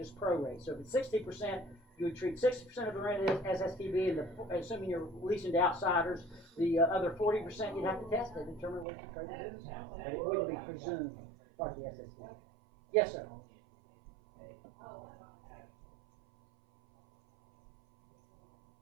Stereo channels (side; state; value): left; drops out; at 8.8 s